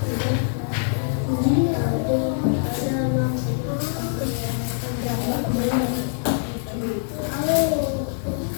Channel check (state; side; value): silent; right; digital silence